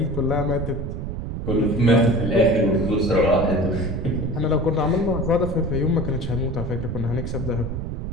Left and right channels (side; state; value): right; noise; rumble, 5 dB below the sound